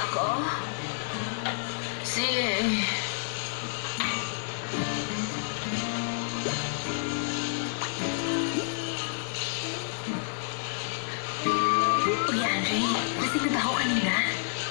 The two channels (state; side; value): silent; right; digital silence